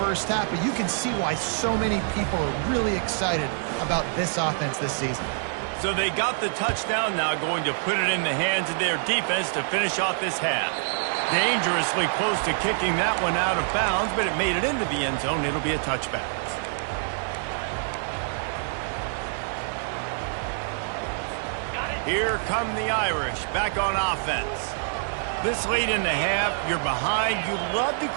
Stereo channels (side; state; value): left; silent; digital silence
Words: 1st half. But you can see why so many people are really excited about this offense this season. So they got the touchdown, now going to put it in the hands of their defense to finish off this half. Dangerously close to kicking that one out of bounds, but it made it into the end zone. It'll be a touchback. Here come the Irish, back on offense. This late in the half, you're behind. You'd love to